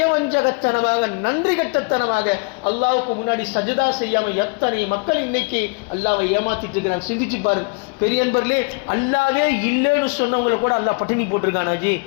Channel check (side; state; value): right; quieter; 31.7 dB